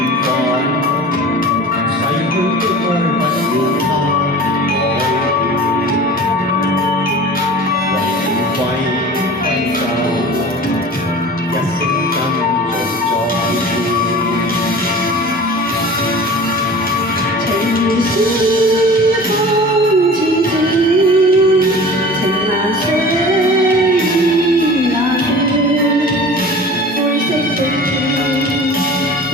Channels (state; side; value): normal; both; correlation 0.40